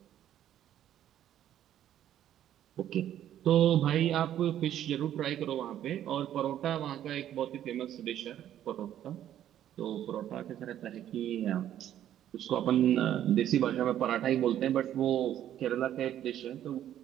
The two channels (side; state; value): left; quieter; 11.3 dB